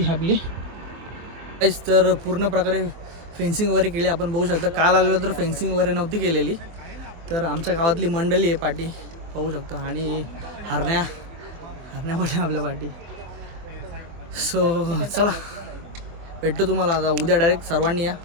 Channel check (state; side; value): late; left; 24 ms